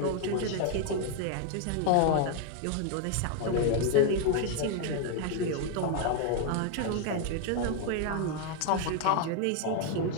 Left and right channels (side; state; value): both; different; correlation 0.01